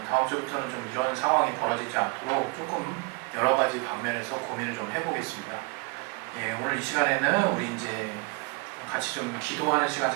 다음 주부터는 좀 이런 상황이 벌어지지 않도록 조금 여러 가지 방면에서 고민을 좀 해보겠습니다. 예, 오늘 이 시간에는 우리 이제 같이 좀 기도하는 시간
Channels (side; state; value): left; quieter; 30.1 dB